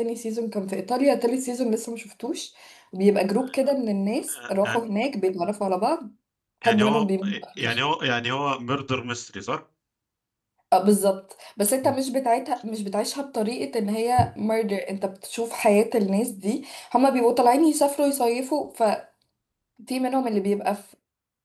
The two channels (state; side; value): identical; both; correlation 1.00